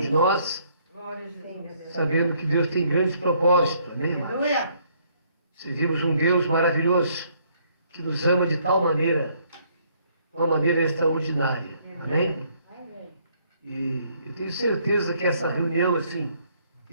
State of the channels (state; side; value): inverted; both; correlation -0.66